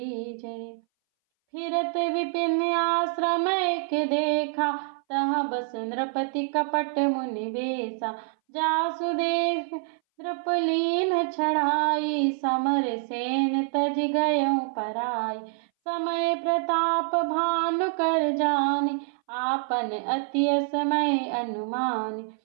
जय। फिरत विपिन आश्रम एक देखा, तहाँ बस नृपति कपट मुनि बेसा। जासु देख नृपलीन छड़ाई, समर सेन तज गयऊ पराई। समय प्रताप भानु कर जानी, आपन अति असमय अनुमानी।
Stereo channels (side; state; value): left; silent; 60 dB below the other